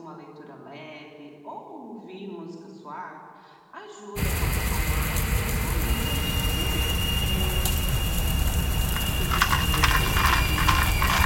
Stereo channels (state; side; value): identical; both; correlation 1.00